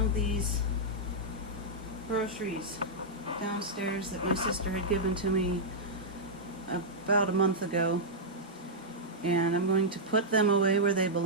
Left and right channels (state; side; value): normal; both; correlation -0.08